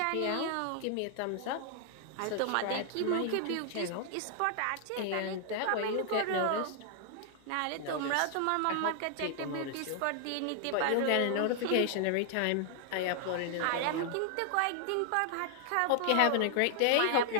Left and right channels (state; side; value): different; both; correlation 0.00